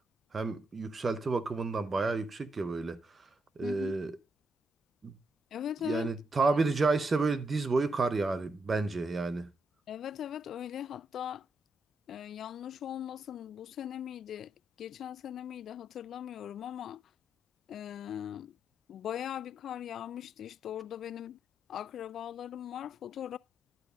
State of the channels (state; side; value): normal; both; correlation 0.80